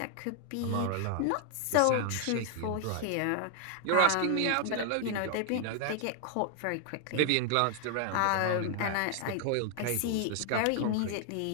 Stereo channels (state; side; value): different; both; correlation 0.00